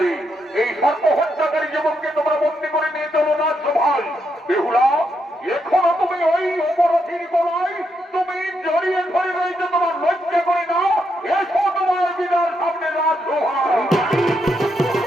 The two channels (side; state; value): both; normal; correlation 0.80